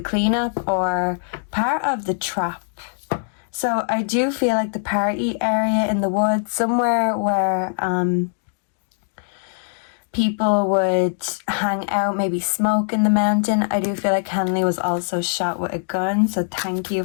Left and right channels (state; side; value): silent; right; digital silence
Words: cleanup or part of the trap. So I do feel like the party area in the woods, somewhere where people would hang out, maybe smoke in the mountain. I do feel like Kenley was also shot with a gun, so thank you